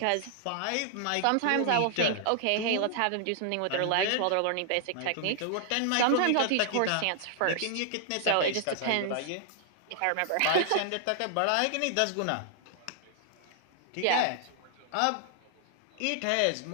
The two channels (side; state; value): both; different; correlation -0.01